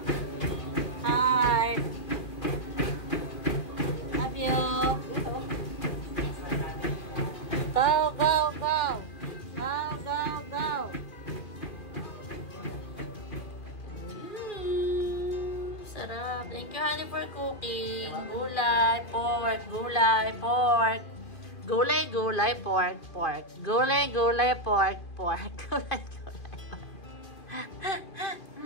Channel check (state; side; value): late; right; 2.4 ms